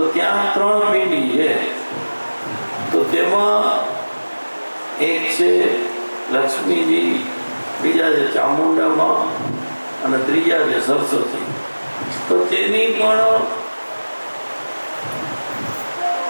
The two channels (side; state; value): both; inverted; correlation -1.00